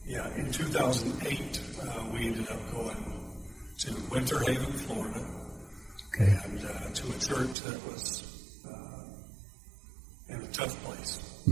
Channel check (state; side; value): drops out; left; at 7.6 s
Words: in 2008, we ended up going to Winter Haven, Florida, and to a church that was in a tough place.